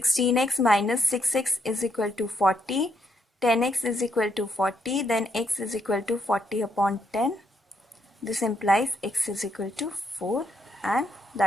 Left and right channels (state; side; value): normal; both; correlation 0.76